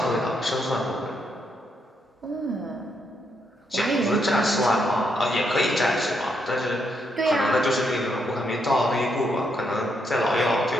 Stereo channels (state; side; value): normal; both; correlation 0.78